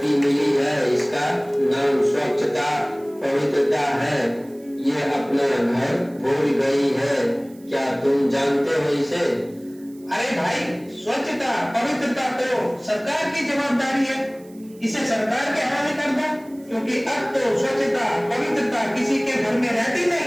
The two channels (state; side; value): noise; right; hiss, 27 dB below the sound